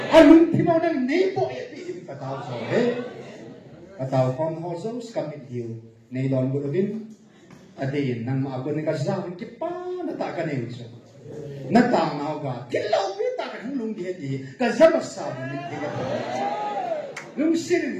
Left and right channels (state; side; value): identical; both; correlation 1.00